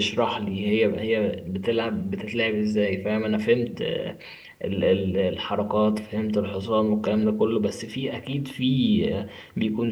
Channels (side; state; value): both; identical; correlation 1.00